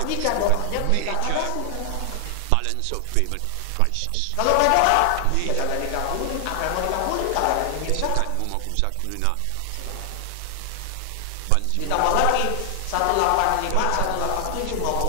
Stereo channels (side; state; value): both; different; correlation 0.00